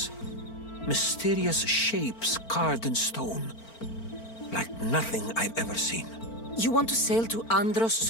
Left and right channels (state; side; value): late; right; 4.4 ms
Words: Mysterious shapes carved in stone. Like nothing I've ever seen. You want to sail to Andros